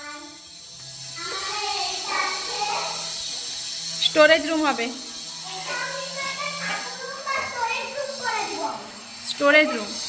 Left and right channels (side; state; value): both; identical; correlation 1.00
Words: আমাদের এটা আছে, স্টোরেজ রুম হবে, এটা আমি তো একটা রুম বা স্টোরেজ রুম করে দিব। Storage room.